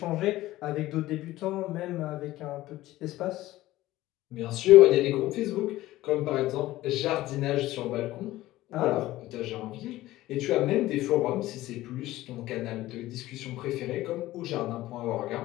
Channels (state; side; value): quieter; right; 16.4 dB